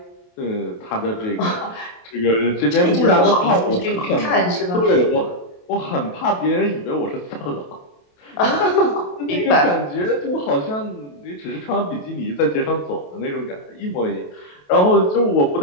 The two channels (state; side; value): late; right; 28 ms